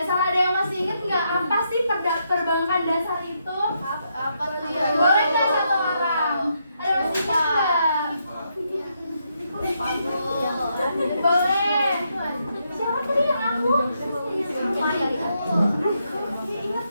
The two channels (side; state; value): both; inverted; correlation -0.79